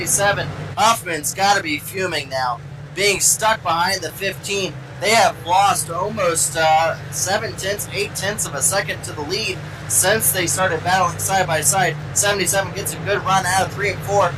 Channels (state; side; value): identical; both; correlation 1.00